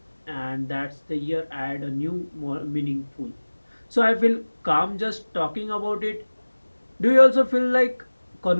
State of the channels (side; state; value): both; inverted; correlation -1.00